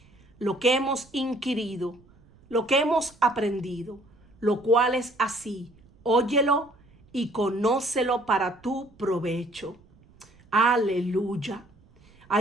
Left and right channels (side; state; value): right; noise; rumble, 28 dB below the sound